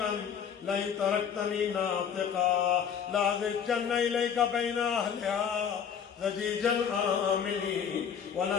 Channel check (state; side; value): quieter; right; 7.7 dB